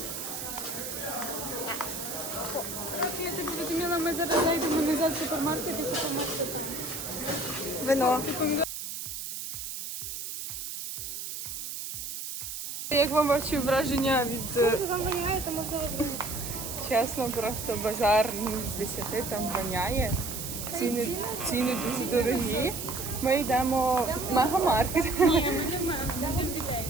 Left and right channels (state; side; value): noise; right; hiss, 6 dB below the sound